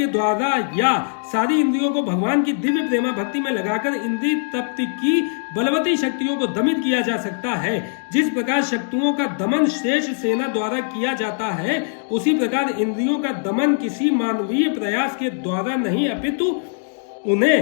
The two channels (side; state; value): right; silent; digital silence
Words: द्वारा या सारी इंद्रियों को भगवान की दिव्य प्रेमा भक्ति में लगाकर इंद्रिय तप्त की बलवती शक्तियों को दमित किया जा सकता है। जिस प्रकार शक्तियों का दमन श्रेष्ठ सेना द्वारा किया जाता है, उसी प्रकार इंद्रियों का दमन किसी मानवीय प्रयास के द्वारा नहीं अपितु